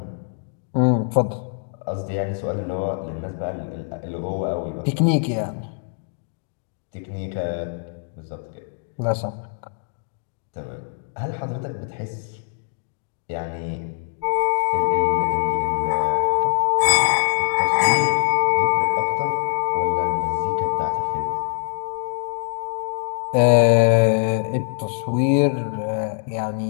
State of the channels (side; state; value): right; silent; digital silence